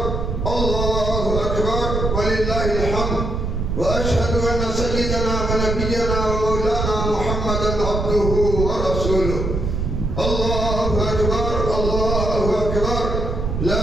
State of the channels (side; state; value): right; noise; rumble, 2 dB below the sound